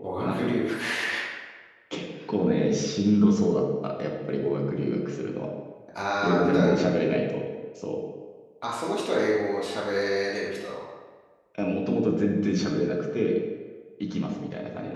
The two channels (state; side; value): identical; both; correlation 1.00